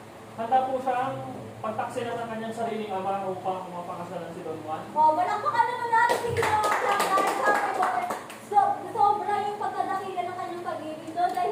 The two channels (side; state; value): both; identical; correlation 1.00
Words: handa po siyang pagtaksilan ng kanyang sariling ama upang mapakasalan si Don Juan. Malakpakan naman natin si Ginoong Clark dahil sabi ko, sobra yung pagkadakila ng kanyang pag-ibig doon